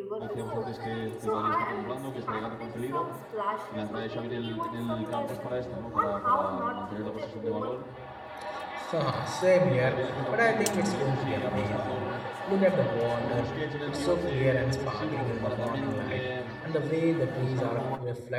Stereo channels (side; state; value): both; identical; correlation 1.00